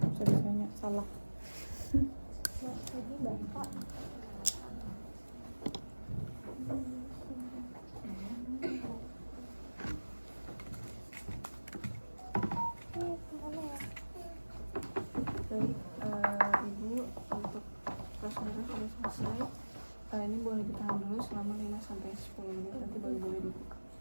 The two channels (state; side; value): inverted; both; correlation -1.00